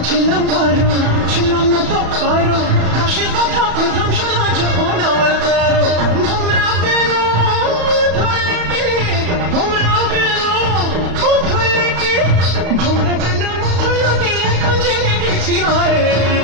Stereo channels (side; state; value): left; late; 34 ms